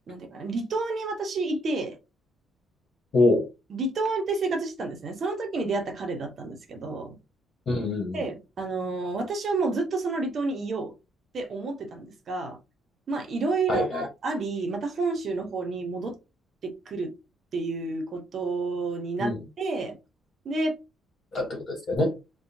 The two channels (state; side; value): normal; both; correlation 0.70